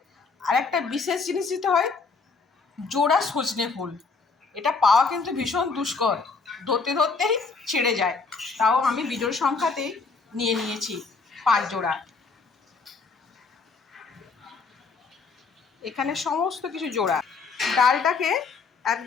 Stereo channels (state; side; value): quieter; right; 4.5 dB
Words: আরেকটা বিশেষ জিনিস দিতে হয়, জোড়া সজনে ফুল। এটা পাওয়া কিন্তু ভীষণ দুষ্কর, ধরতে ধরতেই ছেড়ে যায়, তাও আমি বিজোড় সংখ্যাতেই নিয়ে নিয়েছি 5 জোড়া। এখানে সমস্ত কিছু জোড়া। ডালটাকে